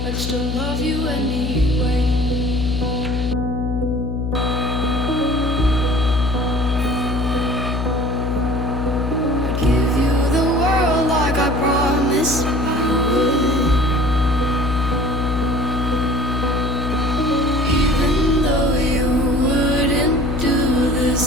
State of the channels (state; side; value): noise; left; hum, 3 dB below the sound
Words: I'd still love you anyway. I'd give you the world like I promised I would. Even though you wouldn't do the